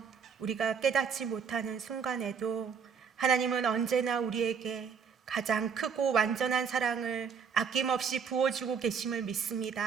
우리가 깨닫지 못하는 순간에도 하나님은 언제나 우리에게 가장 크고 완전한 사랑을 아낌없이 부어주고 계심을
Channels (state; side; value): quieter; left; 6.4 dB